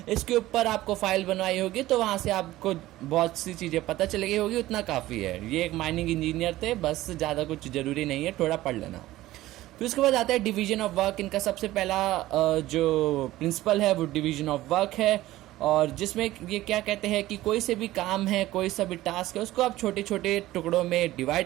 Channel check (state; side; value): quieter; left; 16.2 dB